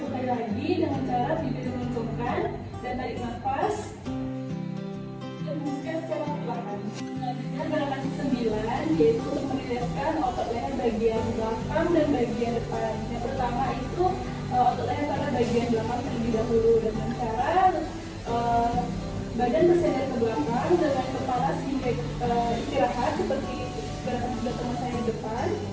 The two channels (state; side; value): identical; both; correlation 1.00